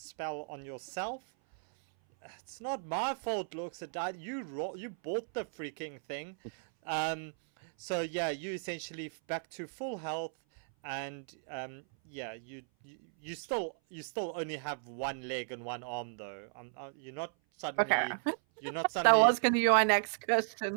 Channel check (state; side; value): silent; left; 54 dB below the other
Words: on yourself. It's not my fault, looks at that. You bought the freaking thing. So yeah, you essentially back to full health, and yeah, you still only have one leg and one arm though. You're not suddenly. Okay. You're not suddenly. That was gonna be my next